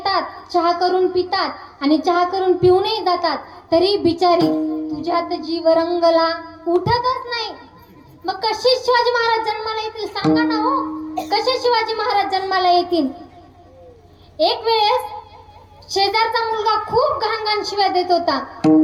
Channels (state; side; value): identical; both; correlation 1.00